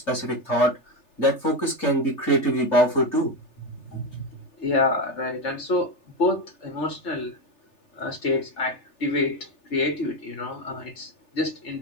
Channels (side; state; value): right; late; 3.4 ms